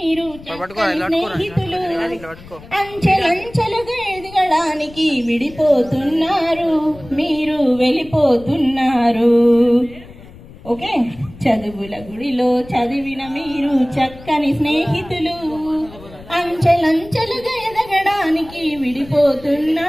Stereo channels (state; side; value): noise; left; rumble, 19 dB below the sound